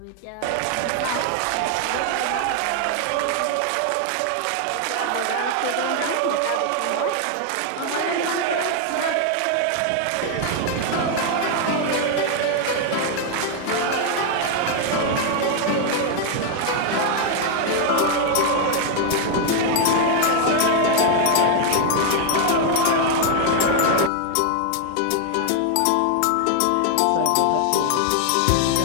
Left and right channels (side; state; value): both; different; correlation 0.00